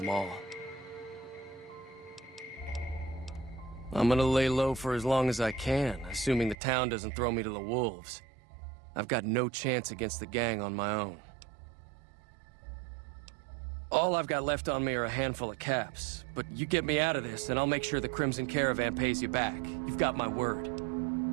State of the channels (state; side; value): drops out; left; at 6.6 s